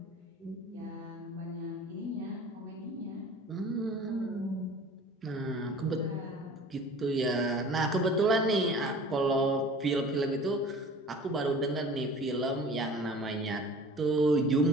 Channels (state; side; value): normal; both; correlation 0.44